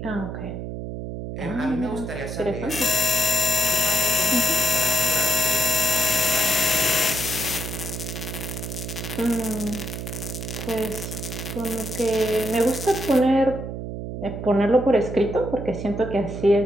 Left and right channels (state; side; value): noise; right; hum, 6 dB below the sound